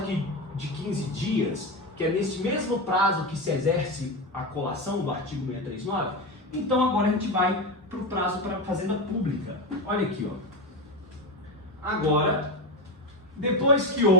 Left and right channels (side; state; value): both; normal; correlation 0.16